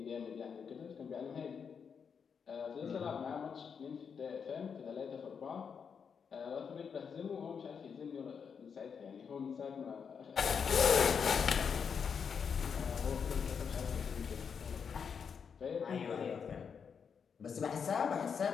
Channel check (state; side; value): quieter; right; 6.5 dB